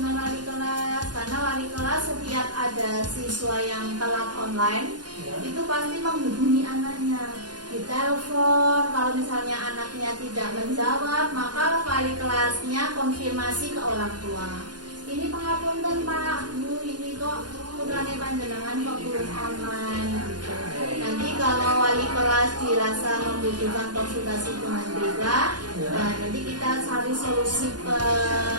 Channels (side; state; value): left; late; 0.70 ms